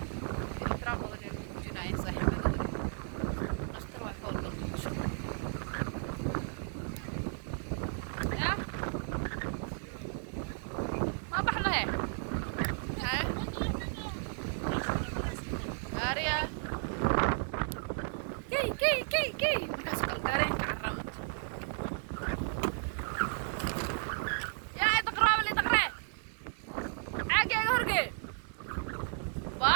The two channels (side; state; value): left; silent; 55 dB below the other